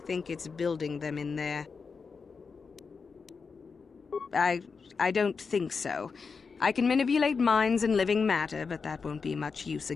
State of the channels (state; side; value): quieter; right; 5.1 dB